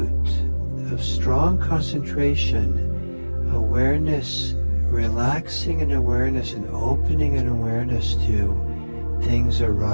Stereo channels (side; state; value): both; inverted; correlation -1.00